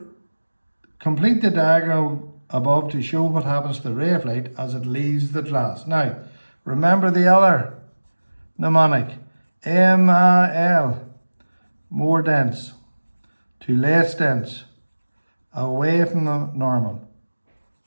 diagram above to show what happens to the ray of light as it leaves the glass. Now, remember the other mnemonic. MAL, more dense, to less dense, away from the normal.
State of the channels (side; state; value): both; inverted; correlation -1.00